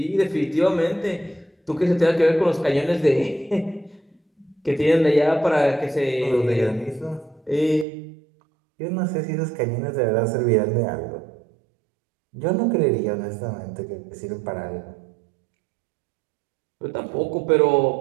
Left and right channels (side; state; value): left; drops out; at 7.9 s